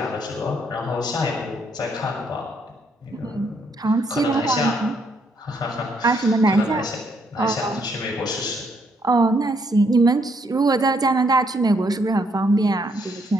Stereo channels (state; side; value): normal; both; correlation 0.72